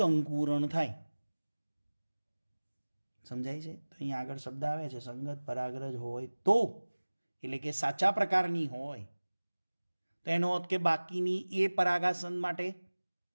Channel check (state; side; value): inverted; both; correlation -1.00